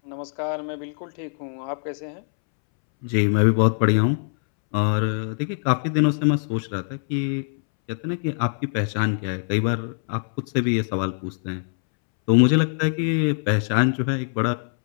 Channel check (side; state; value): right; silent; 63 dB below the other